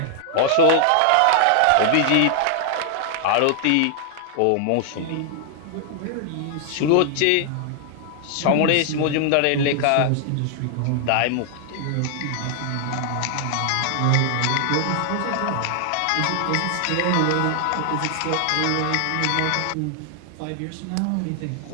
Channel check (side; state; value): both; different; correlation 0.00